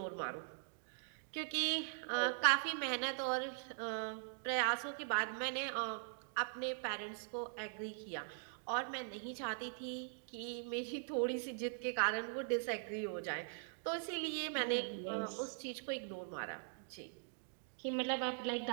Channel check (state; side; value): silent; left; digital silence